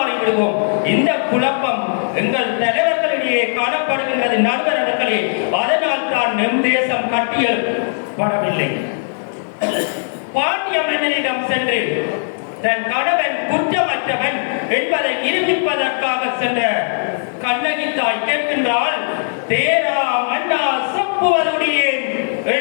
விடுவோம். இந்த குழப்பம் எங்கள் தலைவர்களிடையே காணப்படுகின்றது நண்பர்களே. அதனால் தான் நம் தேசம் கட்டியெழுப்படவில்லை. பாண்டிய மன்னனிடம் சென்று தன் கணவன் குற்றமற்றவன் என்பதை நிரூபிப்பதற்காக சென்ற கண்ணகி தாய் கேட்கின்றால், தேரா மன்னா சப்புவருடைய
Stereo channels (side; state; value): right; silent; digital silence